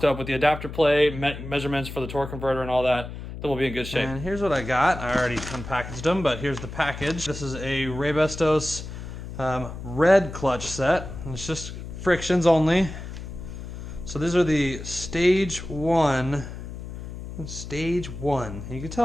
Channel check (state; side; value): noise; left; hum, 10 dB below the sound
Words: up with the adapter plate, measurements for the torque converter and all that, then we'll be in good shape. And here's what I got. I already unpackaged them, but here's the package. This is a Raybestos red clutch set, and it's just frictions only. So these are the stage one. Stage one. You can